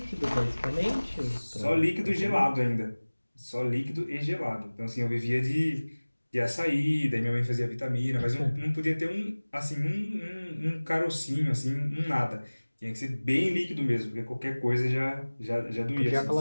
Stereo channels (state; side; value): inverted; both; correlation -1.00